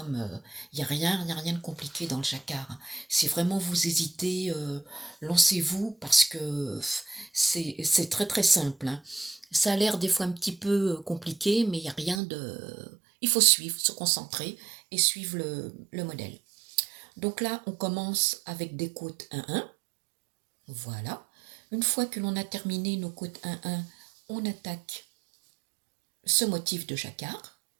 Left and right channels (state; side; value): drops out; left; at 12.2 s